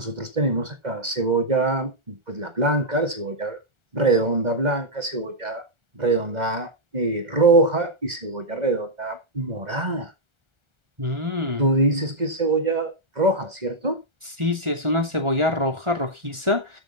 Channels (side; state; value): left; late; 1.4 ms